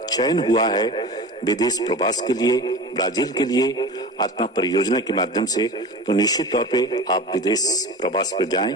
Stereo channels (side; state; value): both; normal; correlation 0.33